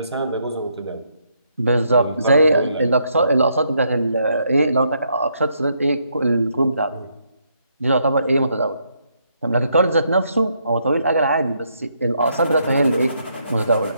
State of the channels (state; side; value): inverted; both; correlation -0.75